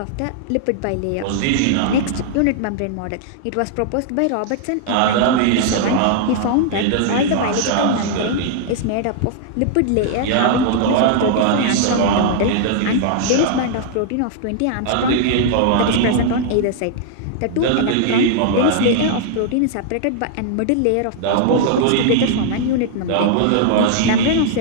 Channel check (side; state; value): both; different; correlation -0.01